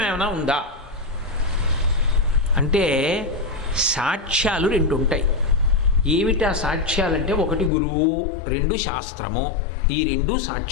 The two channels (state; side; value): drops out; right; at 7.7 s